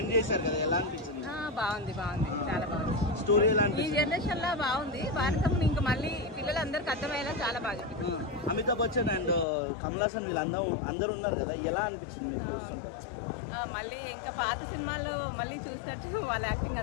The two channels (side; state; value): right; drops out; at 9.5 s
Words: చేశారు కదా, ఎలా అనిపించింది? బాగుంది, చాలా బాగుంది. స్టోరీ ఎలా ఈ అనిపించింది? జనరేషన్ లో బాగుంది. భారతం ఇంకా మళ్ళీ పిల్లలందరికీ అర్థమయ్యేలా చాలా బాగా. అమితాబ్ బచ్చన్ అండ్ కమల్ హాసన్ అందరూ ఉన్నారు కదా, ఎలా అనిపించింది? మళ్ళీ ఇంకా పాత సినిమాల్లో మళ్ళీ చూసినట్టు వాళ్ళ యాక్టింగ్